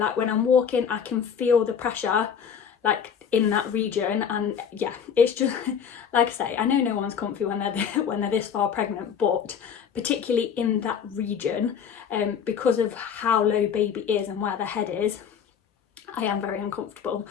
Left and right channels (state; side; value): quieter; right; 7.5 dB